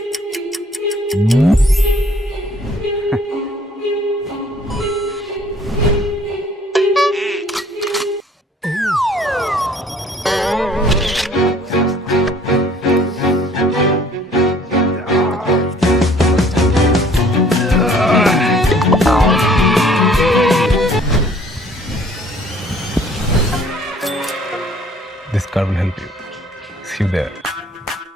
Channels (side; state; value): both; normal; correlation 0.56